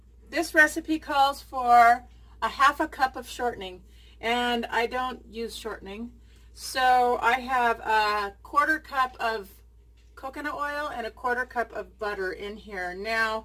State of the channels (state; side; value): identical; both; correlation 1.00